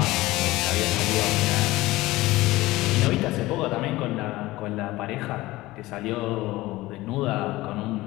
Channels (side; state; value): right; quieter; 18.7 dB